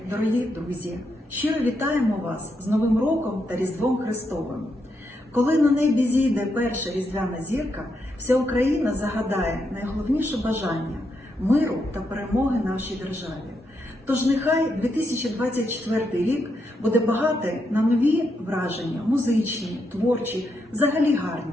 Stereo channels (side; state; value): both; normal; correlation 0.81